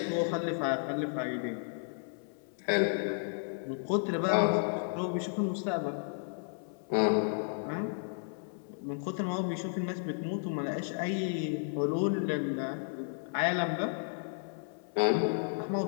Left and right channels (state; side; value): silent; right; 56 dB below the other